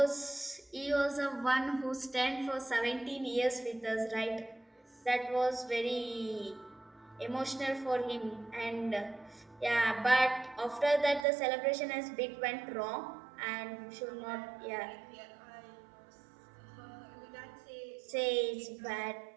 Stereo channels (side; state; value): left; drops out; at 11.2 s